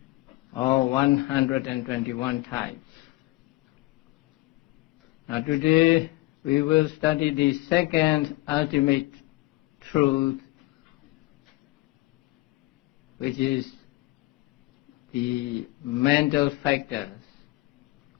or 121 types. Now today we will study the second ultimate truth, which is the mental factors.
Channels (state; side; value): quieter; right; 20.0 dB